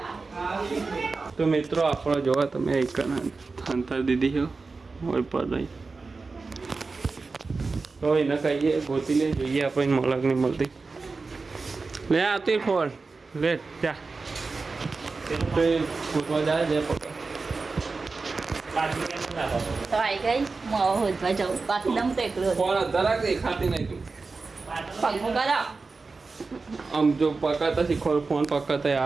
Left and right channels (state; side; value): quieter; left; 4.1 dB